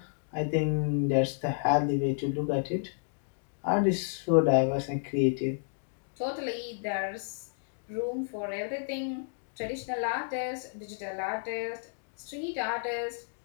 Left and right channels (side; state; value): right; silent; digital silence